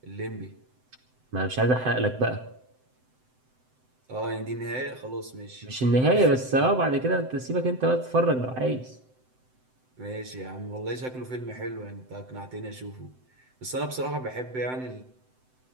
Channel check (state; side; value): late; left; 7.8 ms